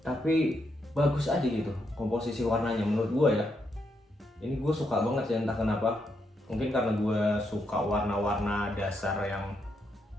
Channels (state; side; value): normal; both; correlation 0.80